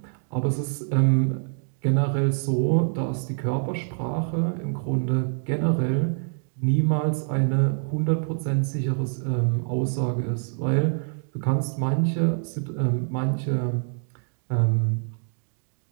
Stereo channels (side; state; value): left; silent; digital silence